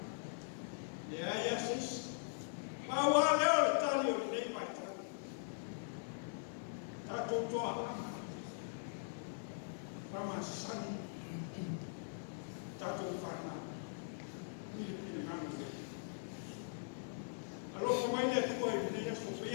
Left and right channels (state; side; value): silent; right; digital silence